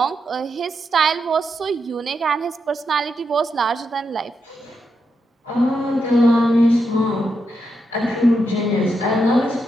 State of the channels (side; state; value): both; normal; correlation 0.83